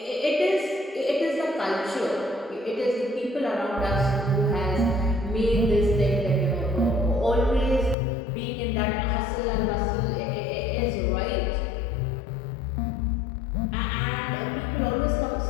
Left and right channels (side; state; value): right; drops out; at 8.0 s